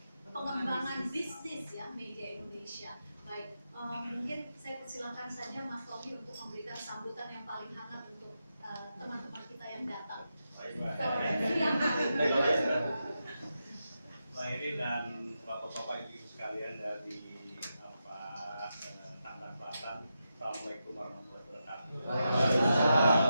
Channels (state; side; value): inverted; both; correlation -0.87